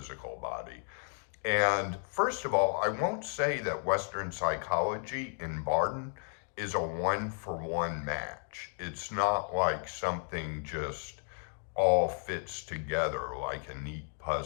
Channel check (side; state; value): right; silent; 56 dB below the other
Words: body. And first of all, I won't say that Western psychology and Bardon is a one-for-one match. It's not like something just all fits together like a neat